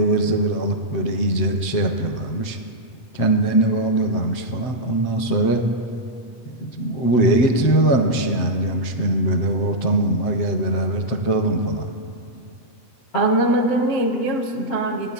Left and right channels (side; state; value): right; late; 7.8 ms